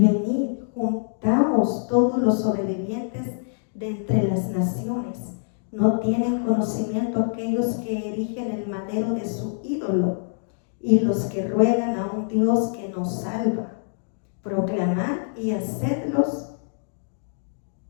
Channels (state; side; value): silent; right; digital silence